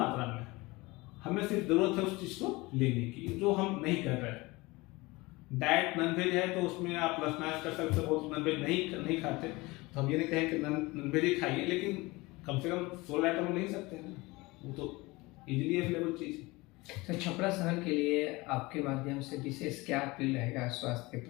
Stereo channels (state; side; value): quieter; right; 22.6 dB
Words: में, हमें सिर्फ जरूरत है उस चीज को लेने की, जो हम नहीं कर रहे हैं। डाइट नॉनवेज है तो उसमें आप प्लस माइनस कर सकते हो, नॉनवेज नहीं खाते तो हम ये नहीं कहें कि नॉनवेज ही खाइए, लेकिन कम से कम 16 आइटम ले ही सकते हैं ना, वो तो इजीली अवेलेबल चीज है। तो छपरा शहर के लिए आपके माध्यम से विशेष क्या अपील रहेगा स्वास्थ्य के